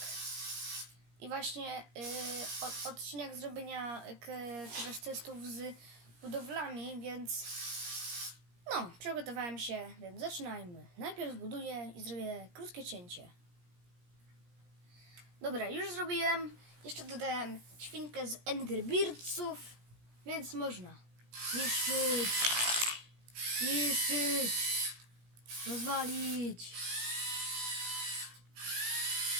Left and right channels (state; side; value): late; left; 17 ms